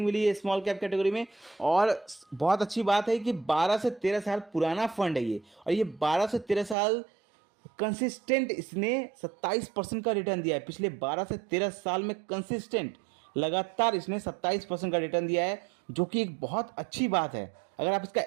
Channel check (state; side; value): drops out; left; at 6.8 s